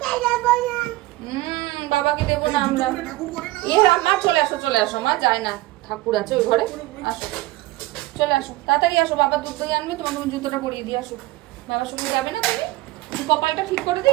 বাবাকে দেবো না আমরা। এ মা চলে আসো চলে আসো মা। যায় না, ঠাকুর আছে ওই ঘরে। আসো চলে আসো তাড়াতাড়ি আসো। বাবা দুধ দই আনবে, তোমার তুমি জুতোটা পরিয়ে দিয়ে আসো। বাবার সঙ্গে যাবে না তুমি? কপালটা ঠিক করে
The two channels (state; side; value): quieter; left; 18.9 dB